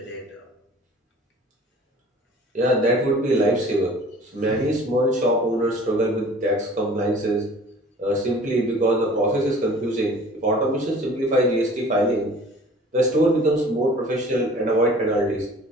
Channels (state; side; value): normal; both; correlation 0.47